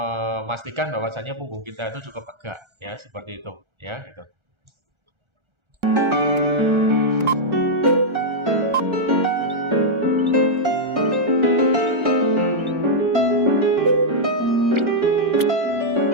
bahwasannya punggung kita itu cukup tegak ya, seperti itu ya gitu.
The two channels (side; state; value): left; late; 1.3 ms